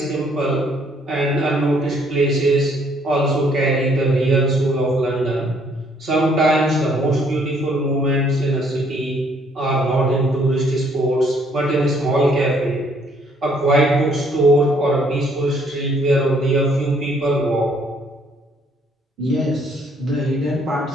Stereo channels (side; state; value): both; normal; correlation 0.65